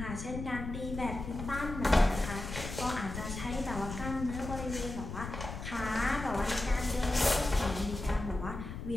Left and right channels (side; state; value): left; noise; rumble, 8 dB below the sound